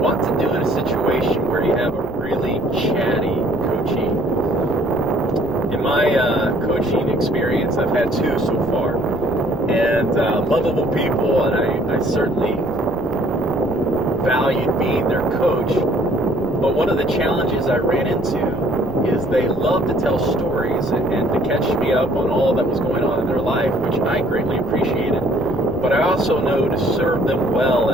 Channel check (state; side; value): noise; left; rumble, 15 dB below the sound